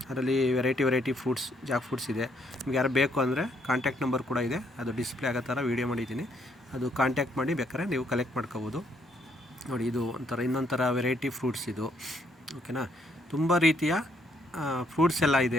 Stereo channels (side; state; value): both; normal; correlation 0.71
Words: ಅದರಲ್ಲಿ ವೆರೈಟಿ ಫ್ರೂಟ್ಸ್, ಜಾಕ್ ಫ್ರೂಟ್ಸ್ ಇದೆ. ನಿಮ್ಗೆ ಯಾರು ಬೇಕು ಅಂದರೆ ಕಾಂಟ್ಯಾಕ್ಟ್ ನಂಬರ್ ಕೂಡ ಇದೆ, ಅದು ಡಿಸ್ಪ್ಲೇ ಆಗೋ ಥರ ವೀಡಿಯೋ ಮಾಡಿದ್ದೀನಿ. ಅದು ಕಾಂಟ್ಯಾಕ್ಟ್ ಮಾಡಿ ಬೇಕಾದ್ರೆ ನೀವು ಕಲೆಕ್ಟ್ ಮಾಡ್ಕೋಬೋದು. ನೋಡಿ, ಇದು ಇನ್ನೊಂಥರ ವೆರೈಟಿ ಫ್ರೂಟ್ಸ್ ಇದು, ಓಕೆನಾ. ತುಂಬ ರೀತಿಯ ಫ್ರೂಟ್ಸ್ ಎಲ್ಲ